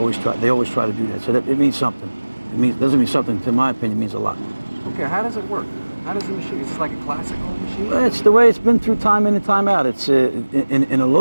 try to do that. So it means something. Doesn't mean something, to my opinion, it means a lot. Okay, how does it work? How does the machine? Is this like a classical machine? Well, it's the way it's been through time in and time out. It's in a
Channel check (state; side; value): inverted; both; correlation -1.00